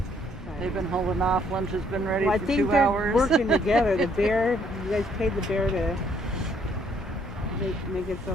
They've been holding off. Lunch has been ready Well, I for think 2 they're hours. working together. The bear, you guys paid the bear to make it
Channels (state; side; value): normal; both; correlation 0.66